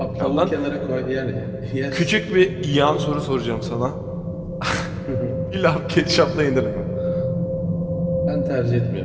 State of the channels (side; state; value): both; identical; correlation 1.00